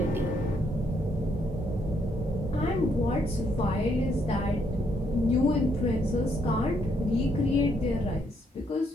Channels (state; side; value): normal; both; correlation 0.73